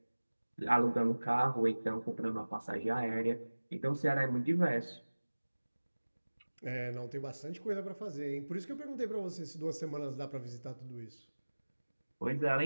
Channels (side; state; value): both; inverted; correlation -1.00